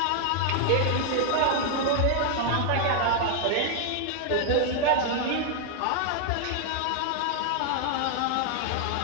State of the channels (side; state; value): both; different; correlation 0.00